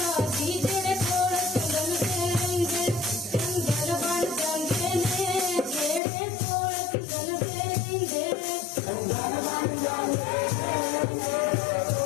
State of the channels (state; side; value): drops out; right; at 6.0 s